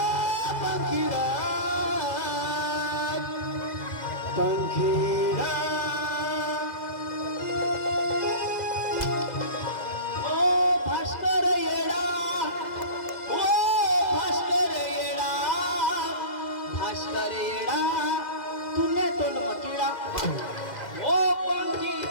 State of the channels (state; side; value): late; right; 2.0 ms